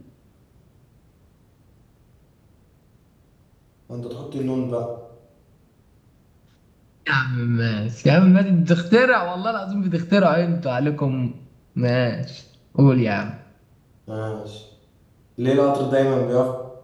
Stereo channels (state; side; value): identical; both; correlation 1.00